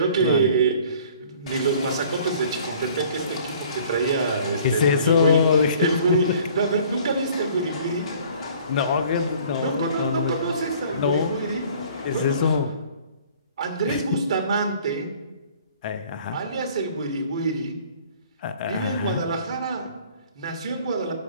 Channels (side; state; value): both; inverted; correlation -0.52